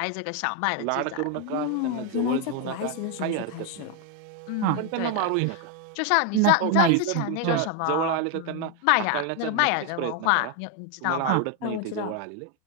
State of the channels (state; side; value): different; both; correlation 0.01